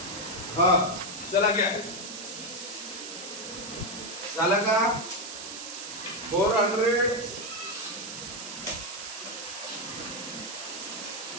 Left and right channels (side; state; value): right; noise; hiss, 9 dB below the sound